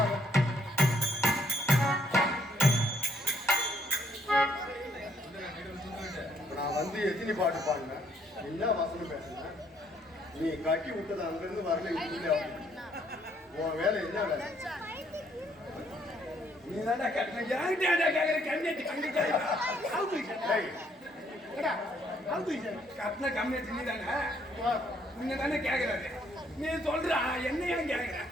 நான் வந்து எத்தனை பாட்டு பாடினேன், என்ன வசனம் பேசினேன். நீ கட்டி விட்டது அங்கிருந்து வரல. உன் வேலை என்ன வேலை? நீ தானே கட்டின கம்மியாச்சு. நீ தானே உன்னை தானே கேட்கறாரு. நீ சொல்ற என்ன ஏன் கேட்கற?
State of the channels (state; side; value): normal; both; correlation 0.68